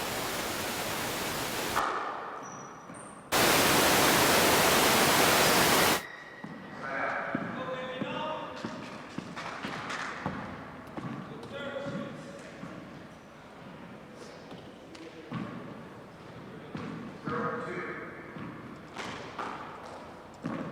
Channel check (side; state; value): both; identical; correlation 1.00